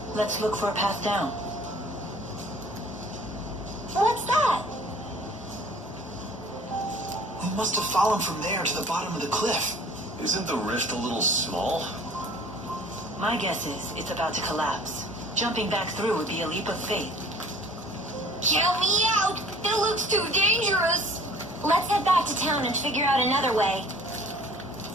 Let's look for a path down. What's that? We must have fallen from there to the bottom of the cliff. Isn't the rift a little small? My guess is it's about to collapse. Jumping back through would be a leap of faith. Count me out! It looks too dangerous! Let's head back to town and figure out another way.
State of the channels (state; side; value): normal; both; correlation 0.50